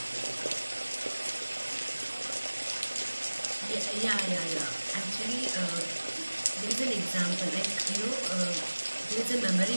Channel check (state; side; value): inverted; both; correlation -1.00